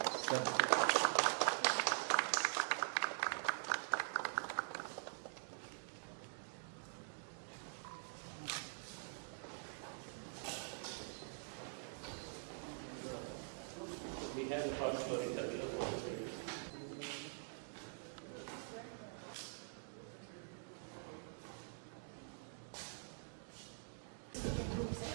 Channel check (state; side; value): silent; left; digital silence